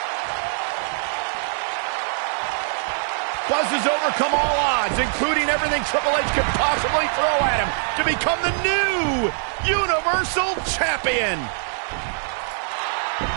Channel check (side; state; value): left; silent; digital silence